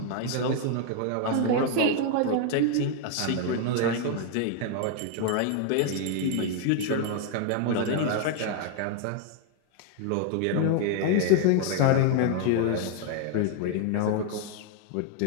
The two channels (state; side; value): different; both; correlation 0.00